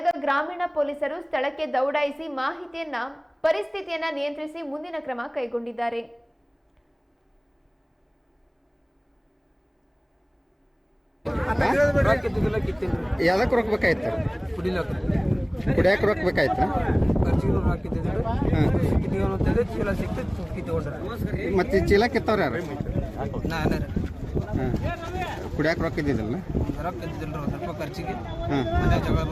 ಗ್ರಾಮೀಣ ಪೊಲೀಸರು ಸ್ಥಳಕ್ಕೆ ದೌಡಾಯಿಸಿ ಪರಿಸ್ಥಿತಿಯನ್ನ ನಿಯಂತ್ರಿಸಿ ಮುಂದಿನ ಕ್ರಮ ಕೈಗೊಂಡಿದ್ದಾರೆ. ಯಾವ್ದಕ್ಕೆ ರೊಕ್ಕಬೇಕಾಯ್ತು? ಕುಡಿಯಕ್ಕೆ ರೊಕ್ಕಬೇಕಾಯ್ತು. ಮತ್ತೆ ಚೀಲ ಕಿತ್ತವ್ರ ಯಾರು? ಕುಡಿಯಕ್ಕೆ ರೊಕ್ಕ ಇದ್ದಿದ್ದಲ್ಲ?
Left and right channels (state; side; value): identical; both; correlation 1.00